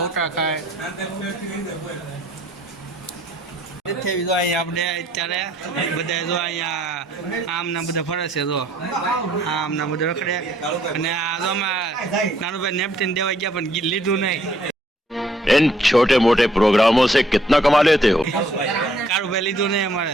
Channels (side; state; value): both; normal; correlation 0.64